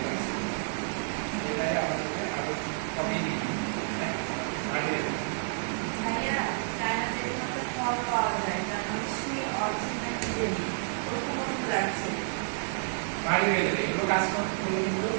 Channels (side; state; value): left; silent; digital silence